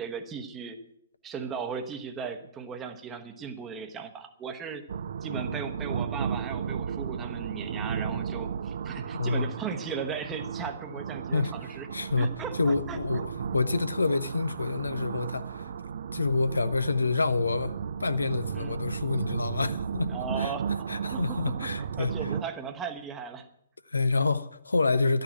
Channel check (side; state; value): both; inverted; correlation -0.72